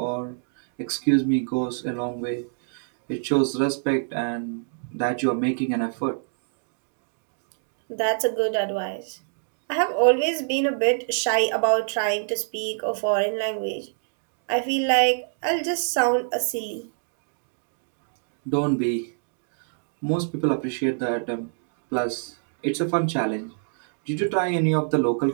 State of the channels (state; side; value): silent; left; digital silence